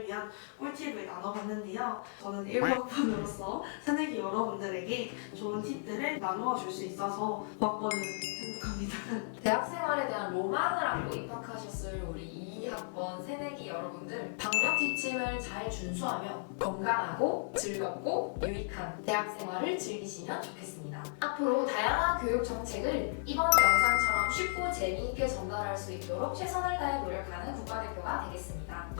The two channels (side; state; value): right; silent; digital silence